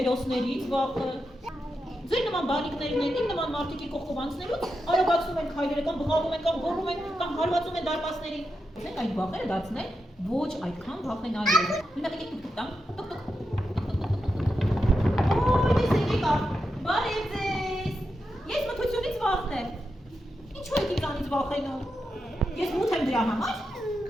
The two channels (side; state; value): both; normal; correlation 0.87